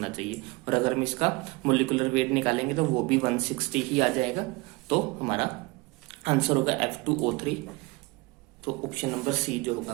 चाहिए। और अगर हम इसका मोलिकुलर वेट निकालेंगे तो वो भी 160 ही आ जाएगा। तो हमारा आंसर होगा F2O3। तो ऑप्शन नंबर सी जो होगा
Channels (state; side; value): quieter; left; 24.8 dB